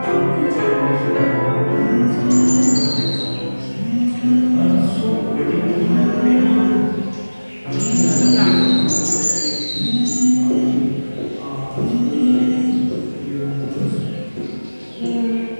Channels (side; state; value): both; inverted; correlation -1.00